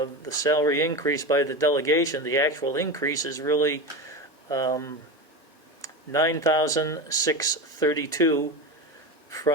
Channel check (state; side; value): normal; both; correlation 0.22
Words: the salary increase by the delegation, the actual increase is really $9,632